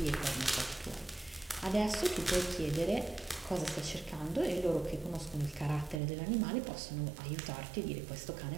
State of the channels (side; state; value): left; drops out; at 6.0 s